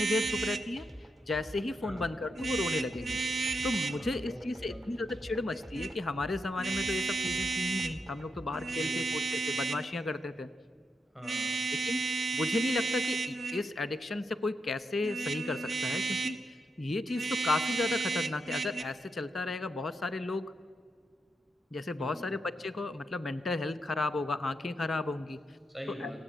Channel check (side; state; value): both; normal; correlation 0.84